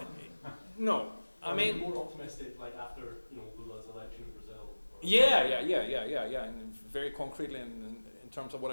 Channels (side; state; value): both; inverted; correlation -1.00